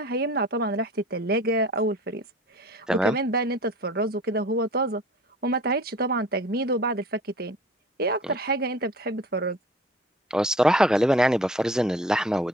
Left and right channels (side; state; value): both; normal; correlation 0.45